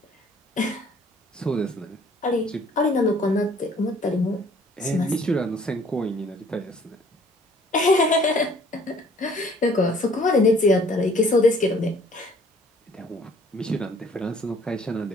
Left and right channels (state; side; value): normal; both; correlation 0.56